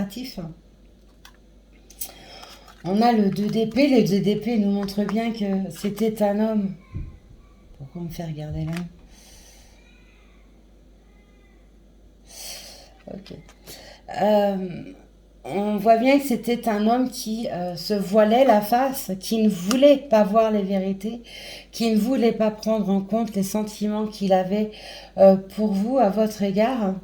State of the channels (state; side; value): identical; both; correlation 1.00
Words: On a le 2 d'épée. Le 2 d'épée nous montre bien que c'était un homme. Pourquoi on me fait regarder là? Ok. On voit bien que c'était un homme qui se voilait la face, qui ne voulait pas voir les vérités, qui ne voulait pas prendre en compte les sentiments qu'il avait pour vous, à votre égard,